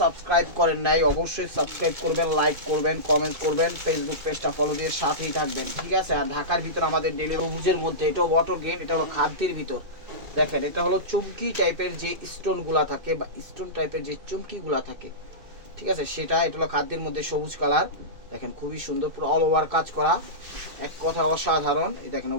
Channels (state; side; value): late; left; 2.6 ms